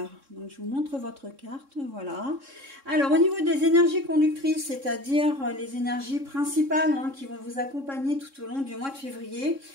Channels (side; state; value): left; late; 3.6 ms